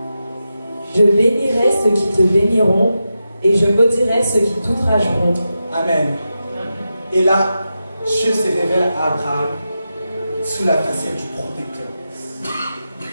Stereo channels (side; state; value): both; inverted; correlation -0.89